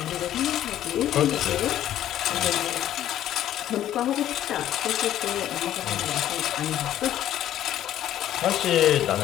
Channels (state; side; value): quieter; right; 12.0 dB